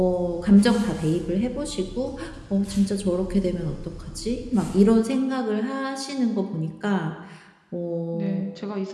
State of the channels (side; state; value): both; identical; correlation 1.00